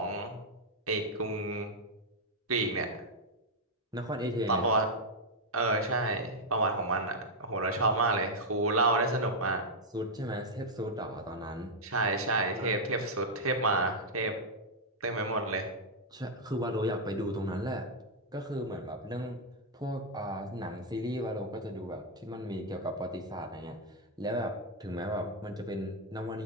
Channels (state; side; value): normal; both; correlation -0.03